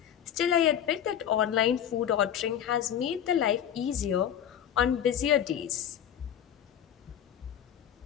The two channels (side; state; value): right; quieter; 9.7 dB